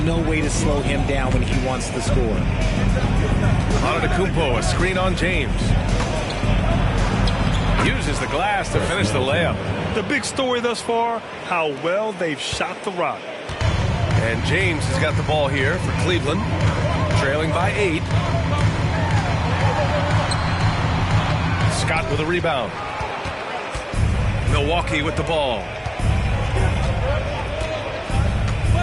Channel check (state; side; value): identical; both; correlation 1.00